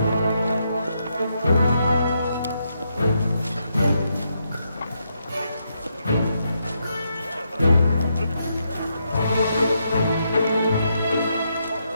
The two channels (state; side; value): inverted; both; correlation -0.80